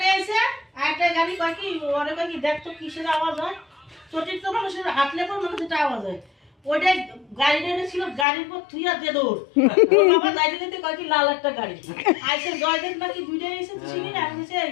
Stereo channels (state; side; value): drops out; right; at 8.2 s